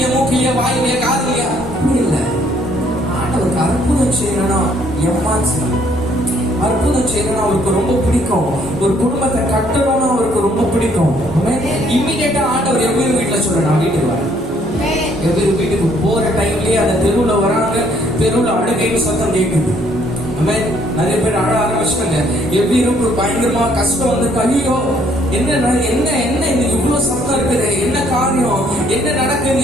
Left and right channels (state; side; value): normal; both; correlation 0.65